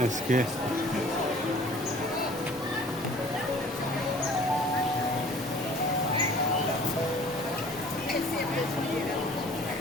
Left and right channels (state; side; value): normal; both; correlation 0.50